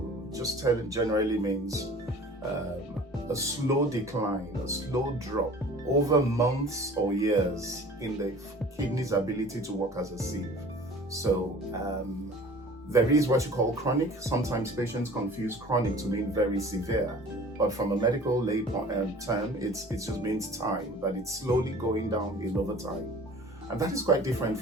just generally means a slow decline, a slow drop over months or years in the kidney's ability to work as a sieve. So there is what you call chronic. Sometimes patients confuse chronic to mean very severe, but from a medical lay term, it just means time, that it's slowly going downhill over time. And that is quite different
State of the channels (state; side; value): normal; both; correlation 0.45